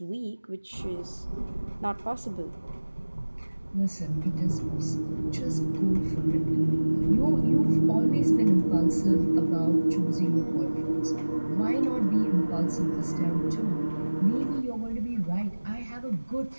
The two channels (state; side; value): inverted; both; correlation -1.00